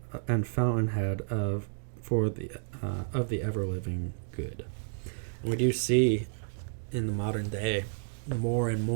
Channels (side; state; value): left; silent; digital silence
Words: and fountainhead of the ever living good. And we do see in the modern day more and